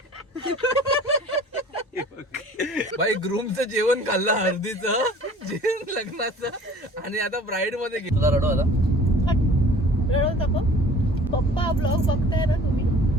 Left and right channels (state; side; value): normal; both; correlation 0.48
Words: भाई ग्रूमचं जेवण खाल्लं हळदीचं जेवण लग्नाचं आणि आता ब्राईड मध्ये घेतलं. तुला रडव आता रडवता का पप्पा ब्लॉग बघताय ना तुम्ही